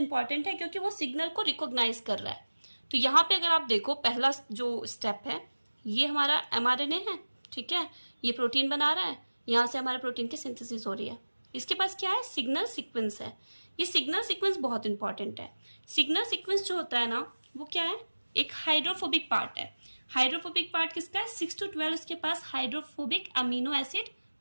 है क्योंकि वो सिग्नल को रिकॉग्नाइज कर रहा है। तो यहाँ पे अगर आप देखो, पहला जो स्टेप है ये हमारा एमआरएनए है, ठीक है, ये प्रोटीन बना रहा है, यहाँ से हमारे प्रोटीन की सिंथेसिस हो रही है। इसके पास क्या है, सिग्नल सीक्वेंस है। ये सिग्नल सीक्वेंस बहुत इंपॉर्टेंट है। सिग्नल सीक्वेंस जो होता है ना, वो क्या है, एक हाइड्रोफोबिक पार्ट है। हाइड्रोफोबिक पार्ट किसका है, 6 to 12 उसके पास हाइड्रोफोबिक अमीनो एसिड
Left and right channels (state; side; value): inverted; both; correlation -1.00